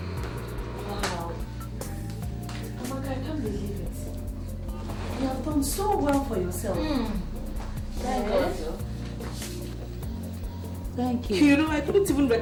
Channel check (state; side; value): identical; both; correlation 1.00